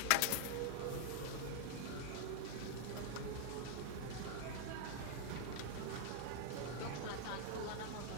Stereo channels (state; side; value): different; both; correlation -0.01